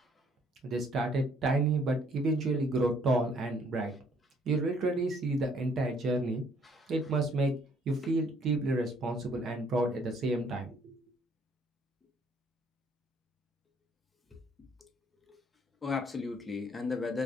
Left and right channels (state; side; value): normal; both; correlation 0.64